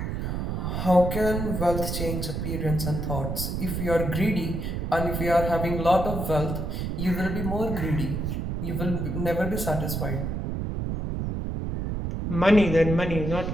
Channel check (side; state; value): right; noise; rumble, 2 dB below the sound